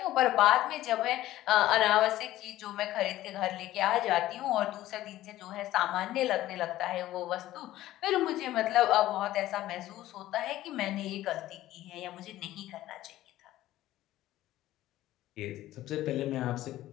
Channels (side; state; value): right; quieter; 14.9 dB